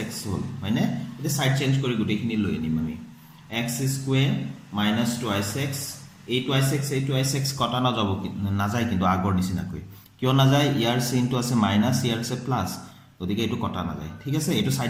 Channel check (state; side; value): identical; both; correlation 1.00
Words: হ'ল হয়নে। এতিয়া সাইড চেঞ্জ কৰি গোটেইখিনি লৈ আনিম আমি, x² - 2x এই 2x কটা নাযায় কিন্তু আগৰ নিচিনাকৈ। কিয় নাযায়, ইয়াৰ চিনটো আছে মাইনাছ, ইয়াৰ আছে প্লাস, গতিকে এইটো কটা নাযায়। ঠিক আছে, এইটো সাইড